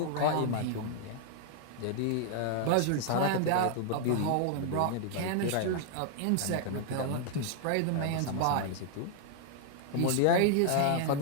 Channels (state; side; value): different; both; correlation 0.00